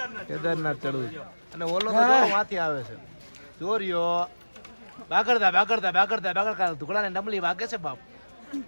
કેદારનાથ ચડવું અને ઓલો તો જો માથી આવે છે ચોરીઓ બાગડતા ટુકડાને નમલી વાગે છે બાપ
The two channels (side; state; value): both; inverted; correlation -1.00